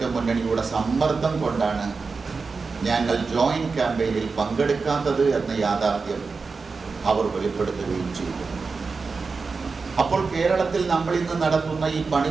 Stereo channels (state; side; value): quieter; left; 4.5 dB